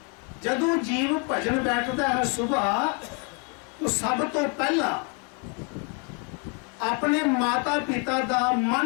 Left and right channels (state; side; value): quieter; right; 34.2 dB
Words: ਜਦੋਂ ਜੀਵ ਭਜਨ ਬੈਠਦਾ ਹੈ ਸੁਬਾਹ, तो सब तो पहला अपने माता पिता का